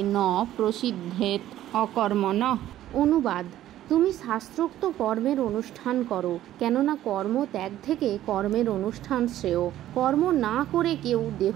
ন প্রসিদ্ধেত অকর্মণঃ। অনুবাদ: তুমি শাস্ত্রোক্ত কর্মের অনুষ্ঠান করো, কেননা কর্ম ত্যাগ থেকে কর্মের অনুষ্ঠান শ্রেয়। কর্ম না করে কেউ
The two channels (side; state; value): left; quieter; 13.1 dB